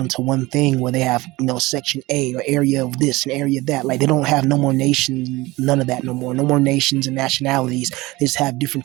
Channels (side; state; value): left; quieter; 20.9 dB